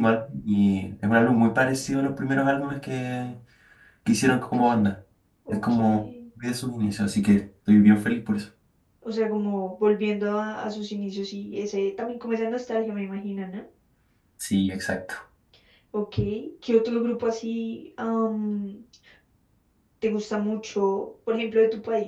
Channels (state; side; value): identical; both; correlation 1.00